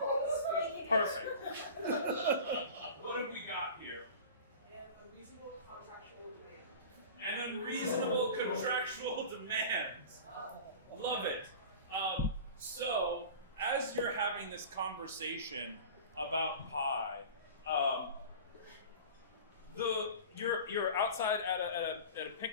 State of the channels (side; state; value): both; inverted; correlation -0.36